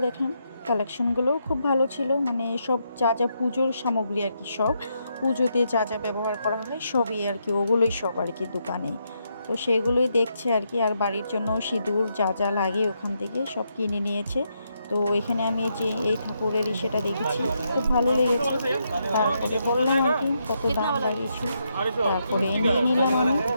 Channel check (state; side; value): inverted; both; correlation -0.80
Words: দেখলাম কালেকশনগুলোও খুব ভালো ছিল, মানে সব যা যা পুজোর সামগ্রী আর কি, সব পুজোতে যা যা ব্যবহার করা হয় সবই আর কি, ওগুলোই সব আর কি দোকানে। তো সেগুলোই দেখছে আর কি। আর বাড়ির জন্য সিঁদুর যা যা লাগে ওখান থেকে সব কিনে নিয়েছে। তো এখানে আমি যে এই ঠাকুরের সেটা দেখেছি, খুব ভালো লেগেছে। তারপরে বললাম আর কি কত দাম লাগিয়েছি। তারপরে নিয়ে নিলাম আমি